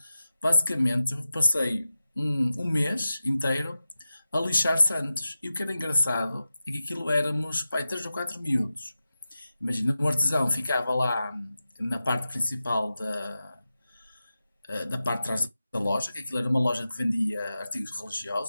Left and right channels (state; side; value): inverted; both; correlation -0.92